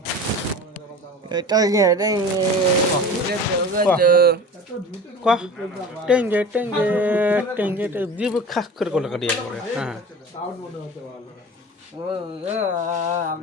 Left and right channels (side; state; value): both; normal; correlation 0.36